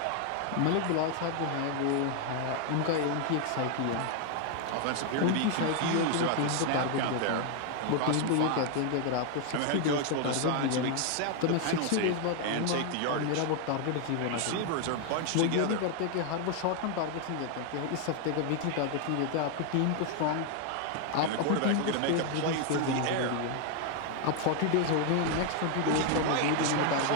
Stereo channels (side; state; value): both; different; correlation 0.00